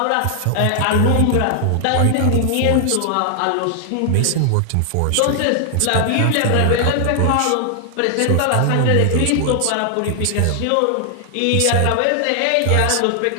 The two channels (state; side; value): different; both; correlation 0.00